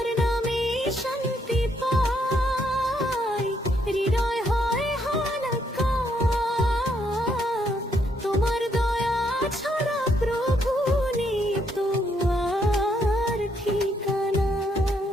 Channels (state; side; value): normal; both; correlation 0.73